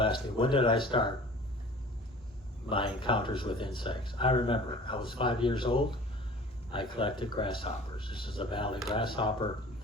me, when did I start my encounters with insects? I remember, I was 5 years old. I collected grasshoppers. This is a valley grasshopper.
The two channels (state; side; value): normal; both; correlation 0.45